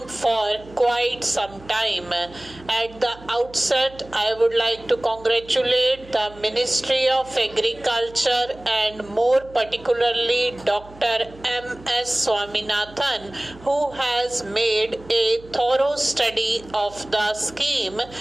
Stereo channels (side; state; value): right; noise; hum, 21 dB below the sound